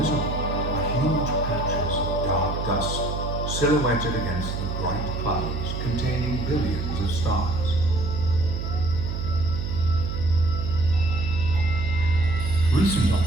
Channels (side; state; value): right; noise; hum, 4 dB below the sound